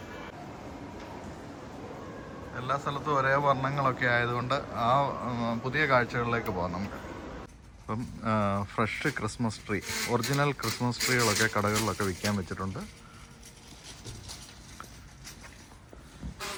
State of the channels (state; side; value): identical; both; correlation 1.00